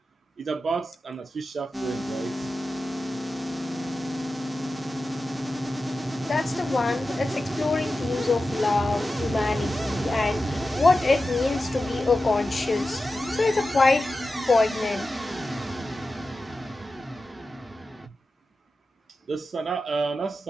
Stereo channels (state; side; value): normal; both; correlation 0.93